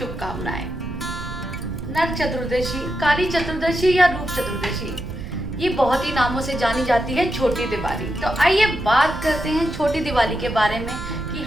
नरक चतुर्दशी, काली चतुर्दशी या रूप चतुर्दशी, ये बहुत ही नामों से जानी जाती है छोटी दिवाली। तो आइए बात करते हैं छोटी दिवाली के बारे में कि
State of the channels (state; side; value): noise; right; rumble, 9 dB below the sound